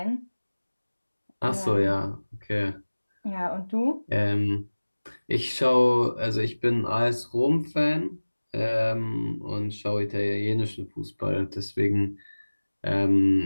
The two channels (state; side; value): inverted; both; correlation -1.00